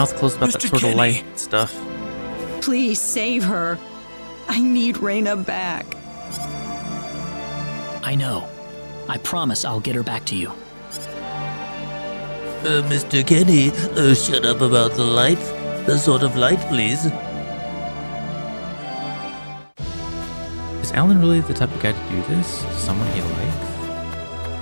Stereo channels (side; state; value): both; inverted; correlation -1.00